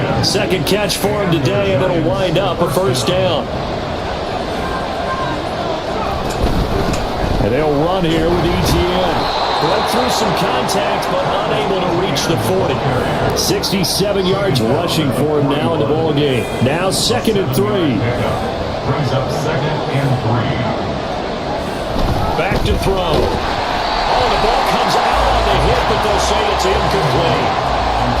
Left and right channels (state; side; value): identical; both; correlation 1.00